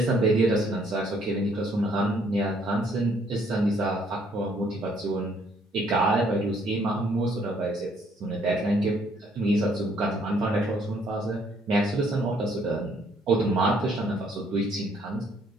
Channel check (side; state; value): both; normal; correlation 0.65